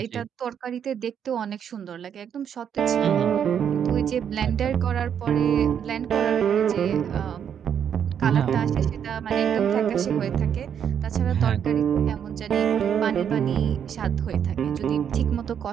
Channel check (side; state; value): left; quieter; 8.4 dB